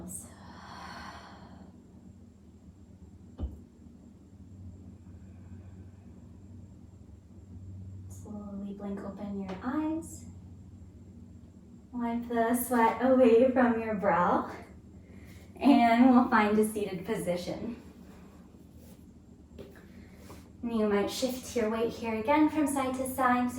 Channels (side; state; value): both; identical; correlation 1.00